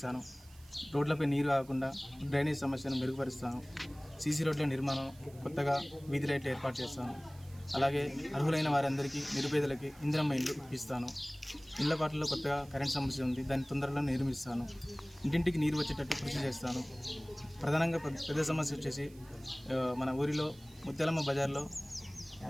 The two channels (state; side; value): noise; right; hiss, 25 dB below the sound